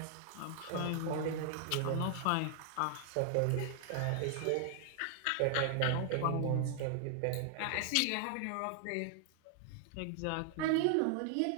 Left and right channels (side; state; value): both; different; correlation 0.00